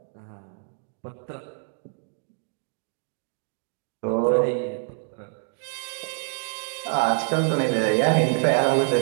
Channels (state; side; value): silent; left; 61 dB below the other